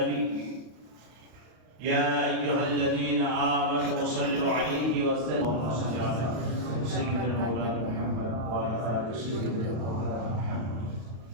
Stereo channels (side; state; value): left; late; 32 ms